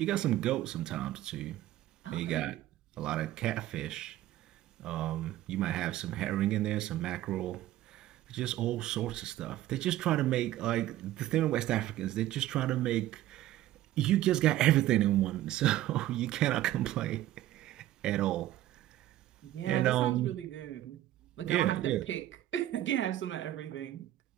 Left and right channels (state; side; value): quieter; left; 14.1 dB